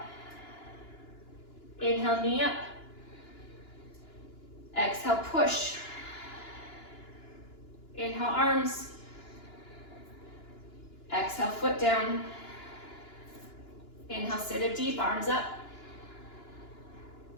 Inhale, knee up. Exhale, push. Inhale, arms. Exhale, foot down. Inhale, sit it deep, arms up.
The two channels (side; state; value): right; late; 2.9 ms